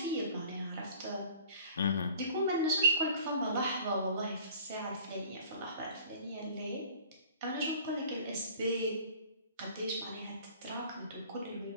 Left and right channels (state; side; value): inverted; both; correlation -0.49